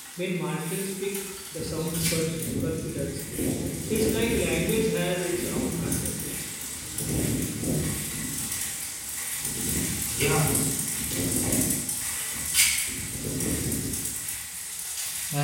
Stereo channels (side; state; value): both; identical; correlation 1.00